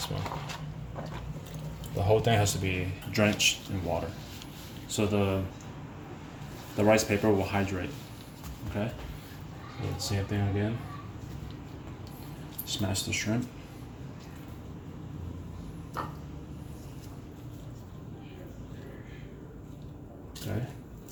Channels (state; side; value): identical; both; correlation 1.00